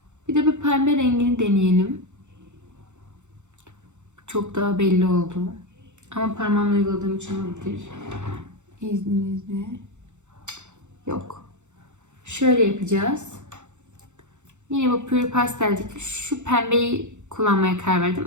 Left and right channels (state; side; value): late; left; 0.84 ms